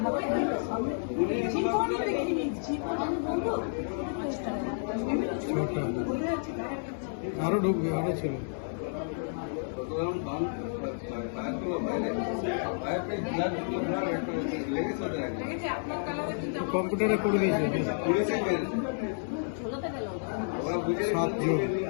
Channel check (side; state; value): right; silent; 57 dB below the other